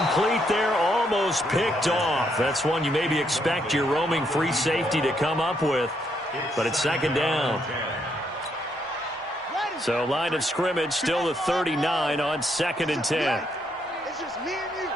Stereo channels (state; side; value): normal; both; correlation 0.75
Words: there, almost picked off. That's one you maybe expect your roaming free safety to come up with. But it's second down. So line of scrimmage still the 39 on second and 10. It's just me and you.